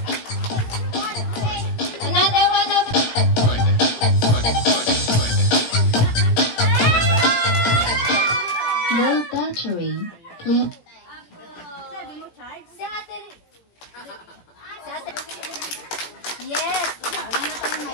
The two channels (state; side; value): late; right; 17 ms